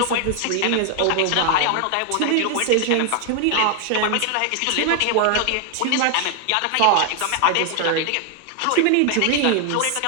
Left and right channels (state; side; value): different; both; correlation 0.00